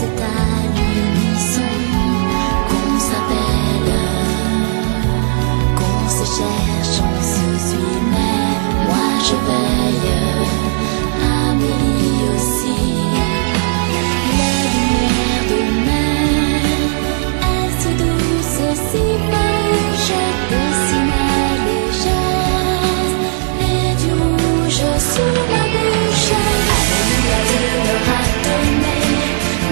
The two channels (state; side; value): silent; left; digital silence